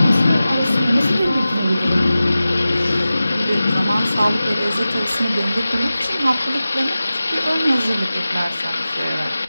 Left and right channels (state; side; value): inverted; both; correlation -0.95